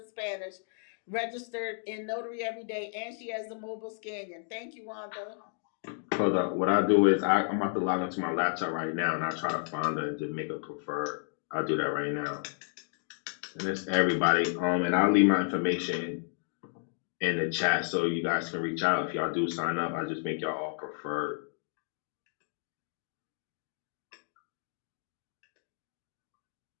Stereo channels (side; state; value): right; silent; 57 dB below the other